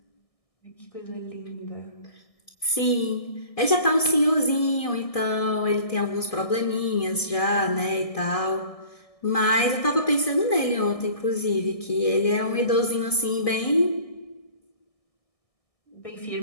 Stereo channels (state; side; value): late; right; 1.6 ms